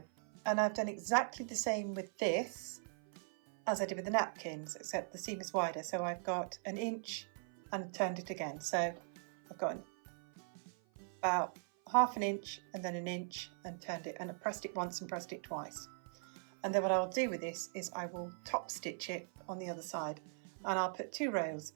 and I've done exactly the same with this as I did with the napkins, except the seam is wider, so I've got 1 inch and turned it again. So I've got about 1/2 inch and then 1 inch and turned it, and I pressed it once and pressed it twice. And then what I'll do with this is I will top stitch it on the other side, and I'll put 2 rows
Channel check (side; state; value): left; silent; 51 dB below the other